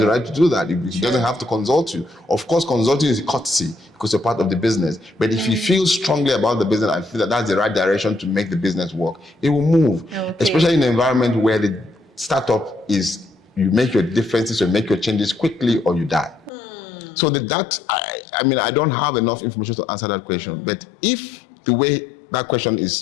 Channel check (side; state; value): right; drops out; at 16.5 s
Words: the right to do that. He doesn't have to consult you. Of course, consulting is a courtesy because you're part of the business. But if you feel strongly about the business and feel that that's the right direction to make the business work, it will move. Especially in an environment where the startup is, you make your differences, you make your changes quickly or you die. So I don't have enough information to answer that question. But if the way that question